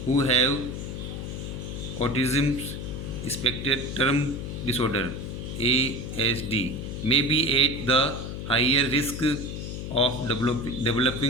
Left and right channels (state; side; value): noise; left; hum, 6 dB below the sound